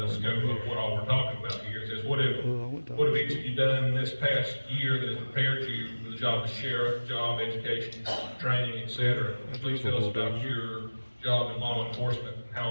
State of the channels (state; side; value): inverted; both; correlation -1.00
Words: scope of what all we're talking about here. It says, what have each of you done this past year that has prepared you for the job of sheriff, job, education, training, etc.? Please tell us about your job in law enforcement and how